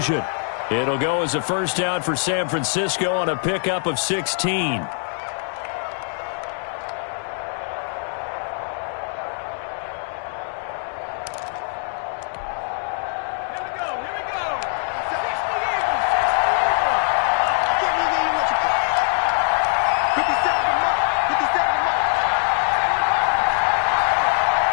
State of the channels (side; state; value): right; silent; 56 dB below the other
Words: It'll go as a first down for San Francisco on a pickup of 16.